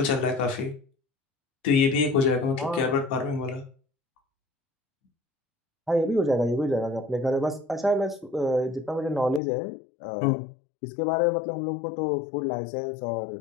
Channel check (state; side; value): drops out; right; at 9.4 s